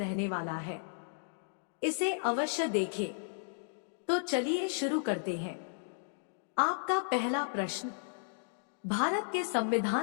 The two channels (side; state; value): right; silent; digital silence